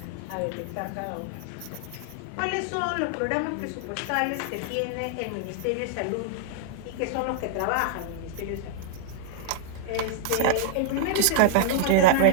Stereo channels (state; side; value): different; both; correlation -0.01